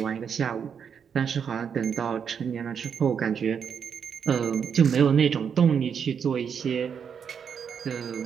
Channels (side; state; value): left; quieter; 7.2 dB